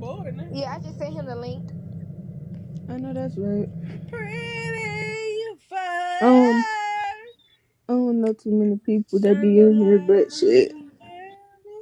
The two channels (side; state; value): both; identical; correlation 1.00